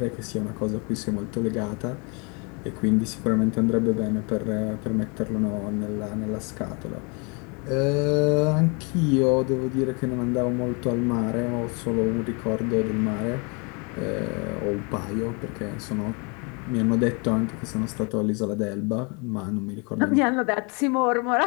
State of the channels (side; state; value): right; quieter; 32.6 dB